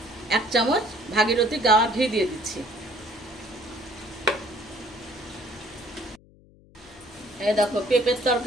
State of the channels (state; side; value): noise; left; hum, 26 dB below the sound